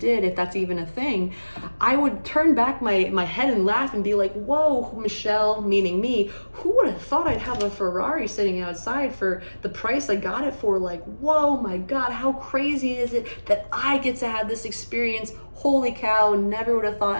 if that's even a thing, I would turn back my head and laugh and be like, whoa, Michelle, meaning me, who would have thought I'd have a Ferrari sitting outside for the price I got it for? Like, whoa, my God, how crazy is it that I get to have this experience? Holy cow, never would have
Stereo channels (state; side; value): inverted; both; correlation -1.00